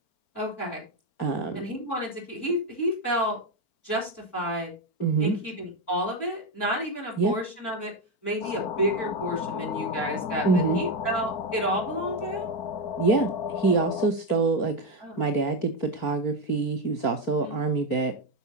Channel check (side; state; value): right; late; 4.4 ms